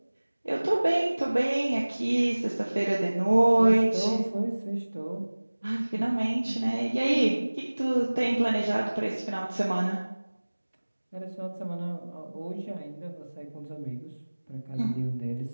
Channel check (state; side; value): inverted; both; correlation -1.00